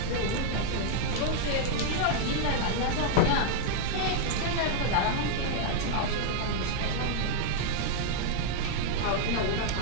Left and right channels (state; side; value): different; both; correlation -0.01